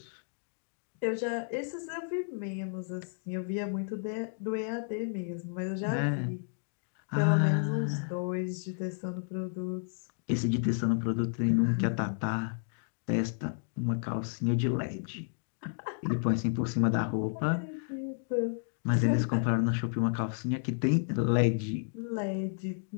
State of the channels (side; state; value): right; silent; digital silence